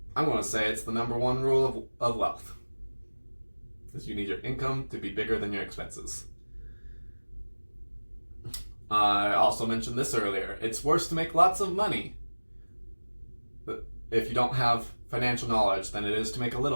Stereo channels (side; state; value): both; inverted; correlation -1.00